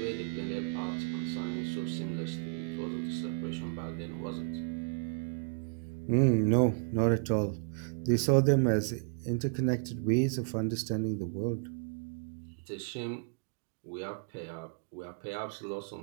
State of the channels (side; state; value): left; silent; digital silence